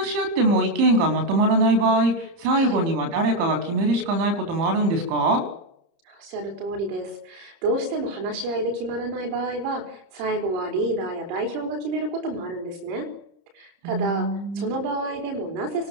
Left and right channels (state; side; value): late; left; 30 ms